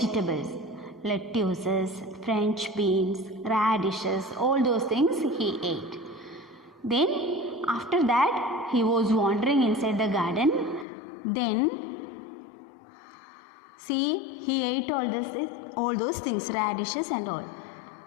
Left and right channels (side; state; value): right; drops out; at 10.9 s